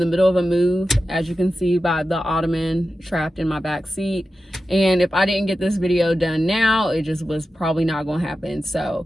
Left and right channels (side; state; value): both; normal; correlation 0.92